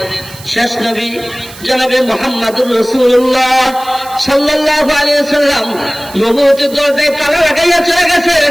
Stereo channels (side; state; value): right; noise; hiss, 18 dB below the sound